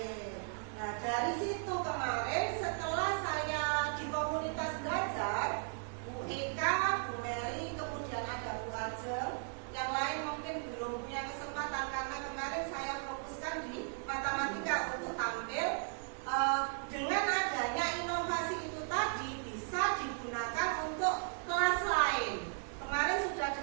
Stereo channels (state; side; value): silent; left; 53 dB below the other